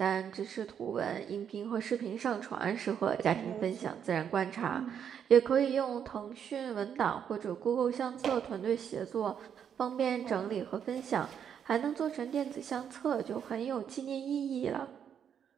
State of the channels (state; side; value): quieter; left; 8.3 dB